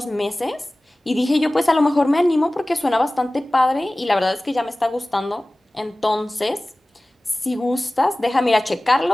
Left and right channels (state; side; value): normal; both; correlation 0.98